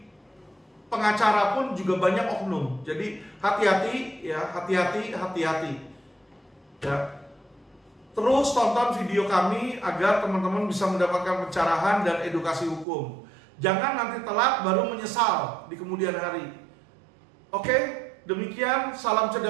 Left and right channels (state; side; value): drops out; left; at 12.9 s